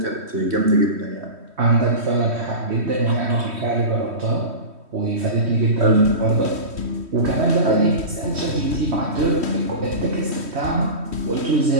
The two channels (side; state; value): left; late; 3.1 ms